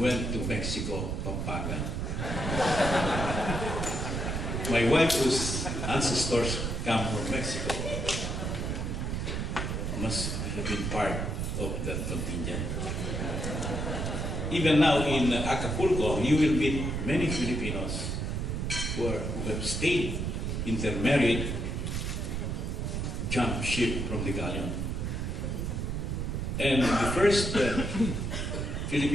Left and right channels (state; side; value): noise; right; rumble, 2 dB below the sound